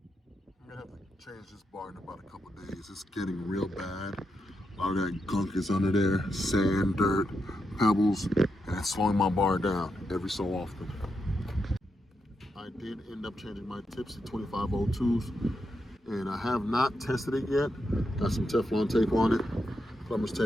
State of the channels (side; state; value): both; normal; correlation 0.84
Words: gonna have to change this bar in about a couple days. It's getting real bad. A lot of that gunk is under there. Sand, dirt, pebbles, and it's slowing my bar down every so often. I did end up changing my tips to 2502s, and I have not tested it yet. Got some Teflon tape on it, plumber's